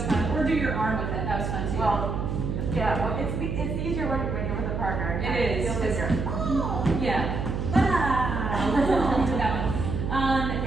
fun. Or do your arm with it, that was fun too. Well, it's easier when you're with a partner. It is. Feels easier. Oh, yeah. We'll do that one.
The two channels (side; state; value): right; noise; hum, 2 dB below the sound